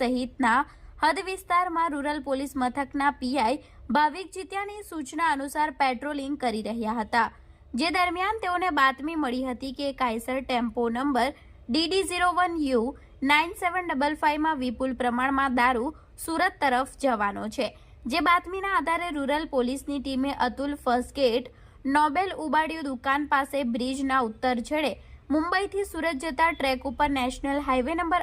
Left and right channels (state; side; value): identical; both; correlation 1.00